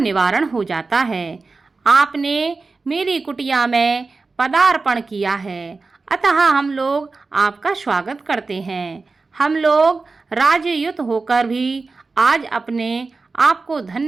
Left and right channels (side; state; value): left; quieter; 4.0 dB